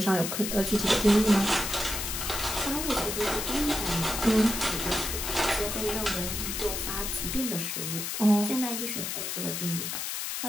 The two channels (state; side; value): noise; left; hiss, 3 dB below the sound